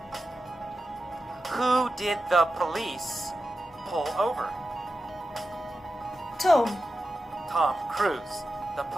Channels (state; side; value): normal; both; correlation 0.91